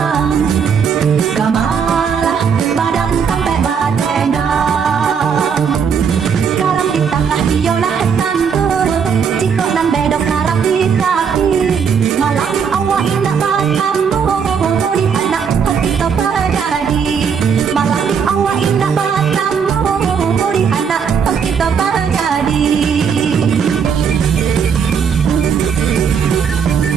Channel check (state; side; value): quieter; left; 6.7 dB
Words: kamalah badan sampai batendang. Garam di tengah biolah tandur, cikok dan bedok garam di kaki. Malam awak indah batamu, di anak hati terjadi. Malam awak indah batamu, di anak hati terjadi.